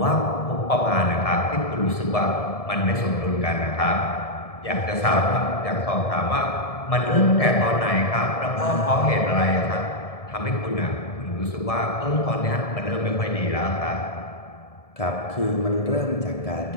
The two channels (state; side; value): late; right; 1.7 ms